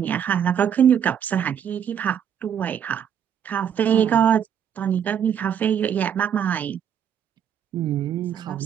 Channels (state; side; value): quieter; left; 8.7 dB